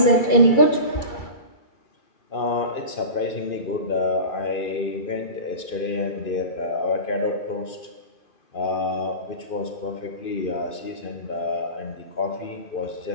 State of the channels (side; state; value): right; late; 2.5 ms